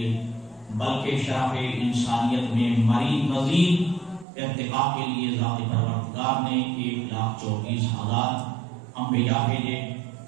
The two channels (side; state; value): left; drops out; at 4.2 s